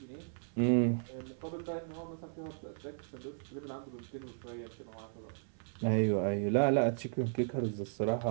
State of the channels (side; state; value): left; silent; 54 dB below the other